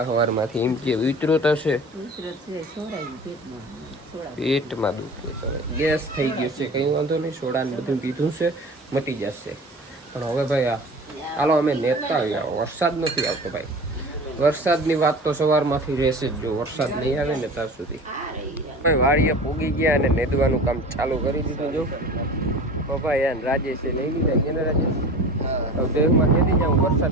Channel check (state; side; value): normal; both; correlation 0.38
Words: સવારમાંથી. એમ કે ઉતરો થશે, પેટમાં દુખે, ગેસ થઈ ગયો છે. કંઈ વાંધો નહીં, સોડા ને બધું પીધું છે, મટી જશે. પણ હવે ભાઈ હાલો અમે નેતા આવ્યા. વરસાદ નથી આવતો ભાઈ. વરસાદની વાત તો સવારમાંથી રહેશે જ, જો વરસાદ નહીં આવે ને ત્યાં સુધી. ભાઈ વાડીએ પૂગી ગયા અને નેદવાનું કામ ચાલુ કરી દીધું. જો પપ્પા યાર રાજેશે લઈ લીધા. કેને રાજેશ દેહમાં નેદી જાઉં,